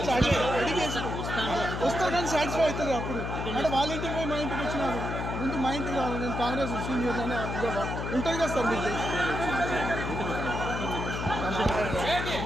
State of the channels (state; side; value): noise; left; hum, 4 dB below the sound